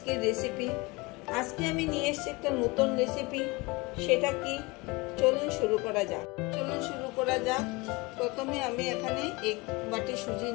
রেসিপি। আজকে আমি নিয়ে এসেছি একটা নতুন রেসিপি। সেটা কি, চলুন শুরু করা যাক। প্রথমে আমি এখানে 1 বাটি সুজি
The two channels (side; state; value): right; quieter; 24.8 dB